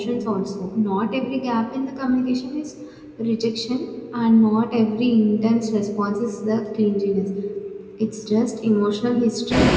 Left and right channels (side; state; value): both; identical; correlation 1.00